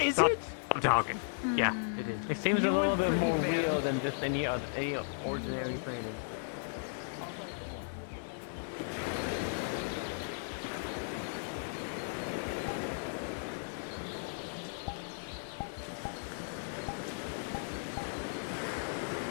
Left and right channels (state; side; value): silent; right; digital silence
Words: it? I'm talking. Yeah, it seems a little bit more real than just any ordinary thing.